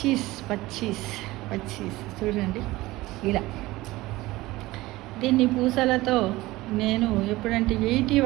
చూడండి ఇలా. దీన్ని పూసలతో నేను ఎప్పుడంటే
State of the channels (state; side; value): quieter; left; 18.9 dB